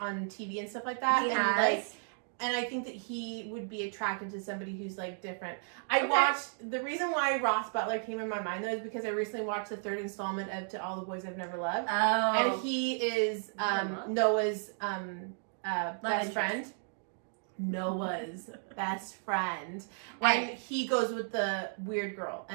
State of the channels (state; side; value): silent; left; digital silence